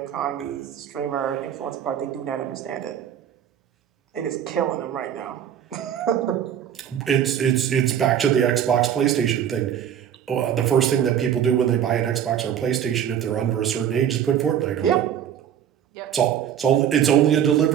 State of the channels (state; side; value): quieter; left; 9.5 dB